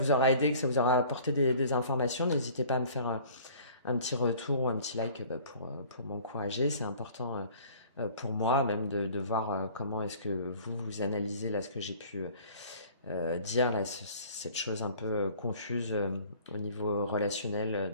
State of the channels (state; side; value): inverted; both; correlation -0.49